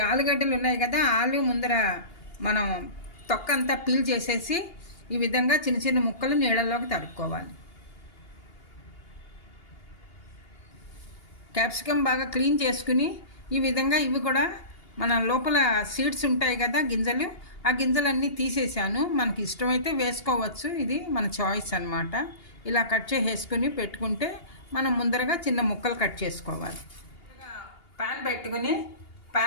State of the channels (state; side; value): late; right; 2.8 ms